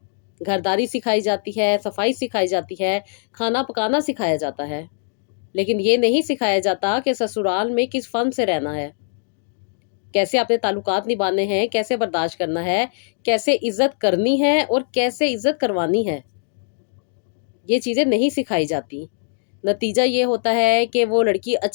گھرداری سکھائی جاتی ہے، صفائی سکھائی جاتی ہے، کھانا پکانا سکھایا جاتا ہے، لیکن یہ نہیں سکھایا جاتا کہ سسرال میں کس فن سے رہنا ہے، کیسے اپنے تعلقات نبھانے ہیں، کیسے برداشت کرنا ہے، کیسے عزت کرنی ہے اور کیسے عزت کروانی ہے۔ یہ چیزیں نہیں سکھائی جاتی۔ نتیجہ یہ ہوتا ہے کہ وہ لڑکی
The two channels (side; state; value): right; silent; digital silence